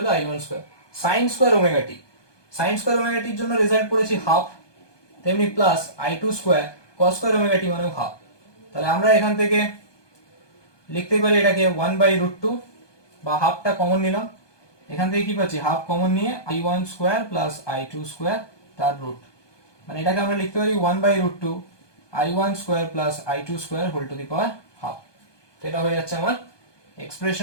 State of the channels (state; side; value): late; right; 1.2 ms